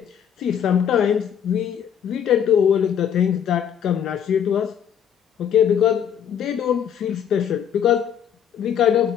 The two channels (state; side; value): quieter; right; 8.7 dB